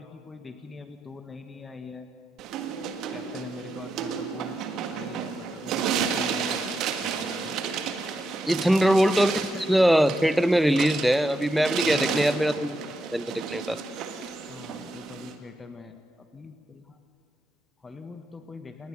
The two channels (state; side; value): normal; both; correlation 0.85